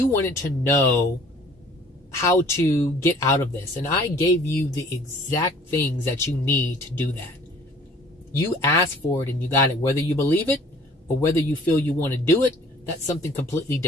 wanted to know how to get out of this, and I gave you the exact things that you need to do that. You asked for it and you got it. Whether you believe it or whether you feel you want to do it, that's something completely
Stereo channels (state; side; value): normal; both; correlation 0.52